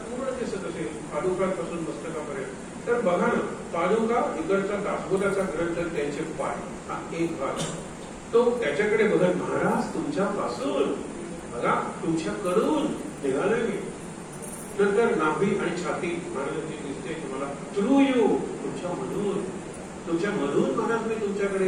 पूर्ण दिसत असेल पादुकांपासून मस्तकापर्यंत, तर बघा ना, पादुका इकडचा दासबोधाचा ग्रंथ, त्यांचे पाय, हा एक भाग. तो त्याच्याकडे बघत महाराज तुमच्यापासून, बघा तुमच्याकडून निघालोय मी. नंतर नाभी आणि छाती महाराजांची दिसते तुम्हाला, थ्रू यू, तुमच्यामधून, तुमच्यामधून महाराज मी तुमच्याकडे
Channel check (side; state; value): both; identical; correlation 1.00